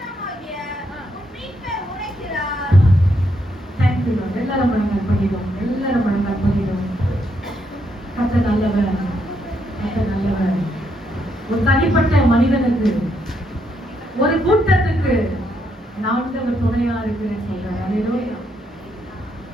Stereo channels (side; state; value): both; normal; correlation 0.77